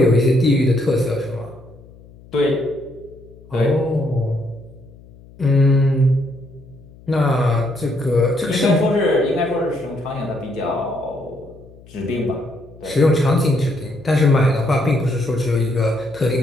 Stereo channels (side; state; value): left; noise; hum, 23 dB below the sound